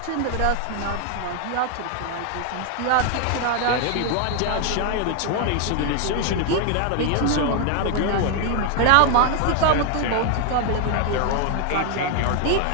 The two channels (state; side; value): different; both; correlation 0.01